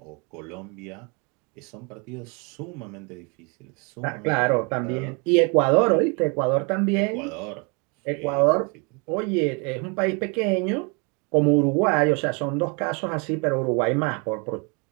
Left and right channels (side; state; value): left; quieter; 32.4 dB